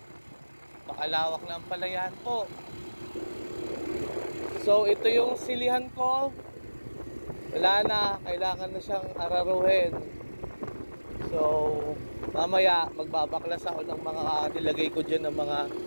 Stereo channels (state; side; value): inverted; both; correlation -1.00